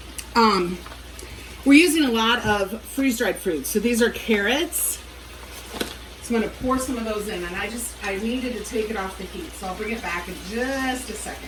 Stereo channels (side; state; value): both; identical; correlation 1.00